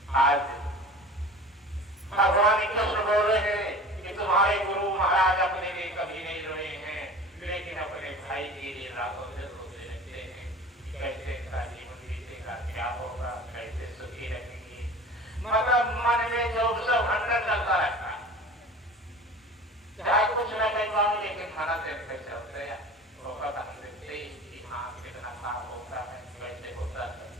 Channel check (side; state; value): both; normal; correlation 0.39